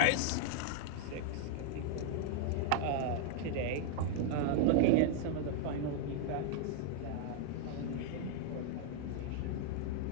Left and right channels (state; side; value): different; both; correlation 0.00